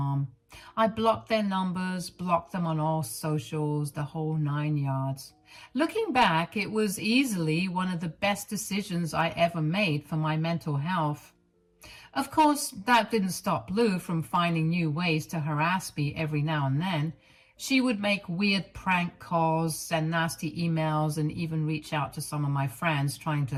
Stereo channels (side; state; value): both; identical; correlation 1.00